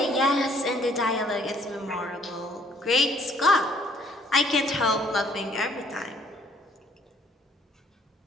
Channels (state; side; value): normal; both; correlation 0.62